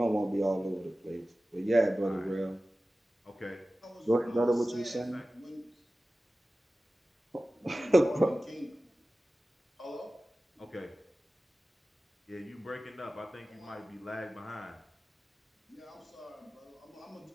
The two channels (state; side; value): normal; both; correlation 0.96